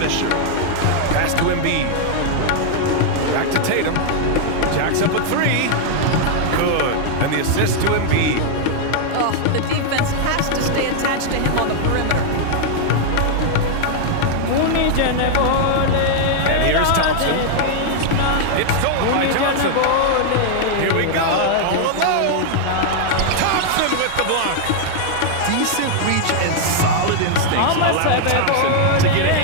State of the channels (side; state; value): both; different; correlation 0.00